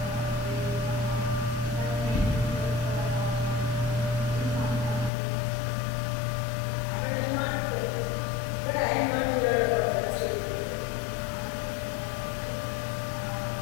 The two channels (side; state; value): right; drops out; at 5.1 s